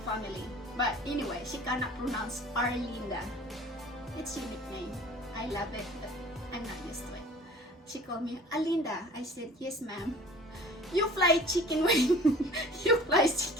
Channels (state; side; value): normal; both; correlation 0.46